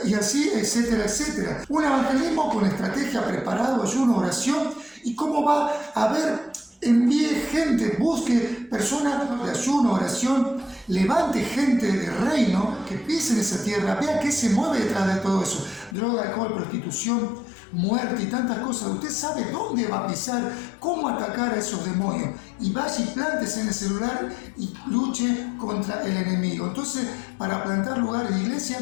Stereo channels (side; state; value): right; drops out; at 16.0 s